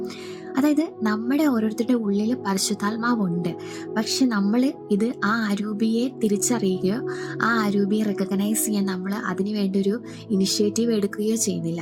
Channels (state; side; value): identical; both; correlation 1.00